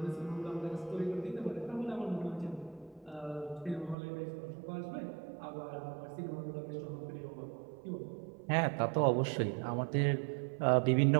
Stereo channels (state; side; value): drops out; left; at 4.0 s